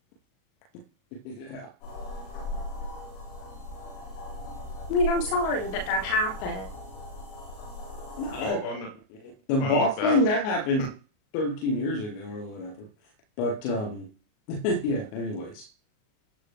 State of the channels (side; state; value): right; late; 38 ms